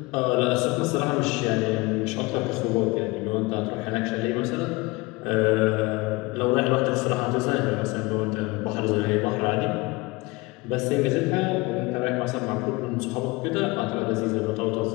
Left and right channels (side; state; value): right; quieter; 23.7 dB